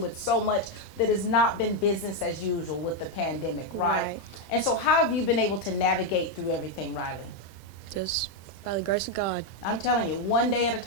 with so much that has not been business as usual with the pandemic, right? Right. And so how have you been able to navigate through everything, Riley? Just by the grace of God. I'm telling you, one day at a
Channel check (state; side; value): late; right; 26 ms